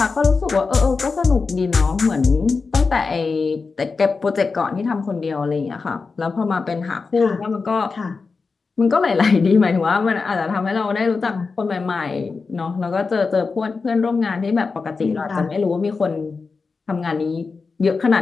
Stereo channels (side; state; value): right; quieter; 4.5 dB